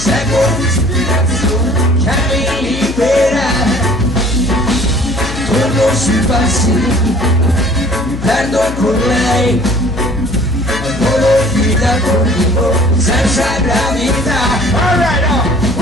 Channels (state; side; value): noise; left; hum, 9 dB below the sound